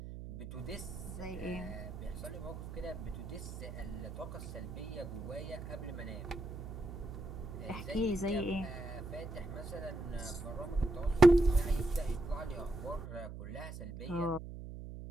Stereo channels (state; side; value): noise; right; hum, 9 dB below the sound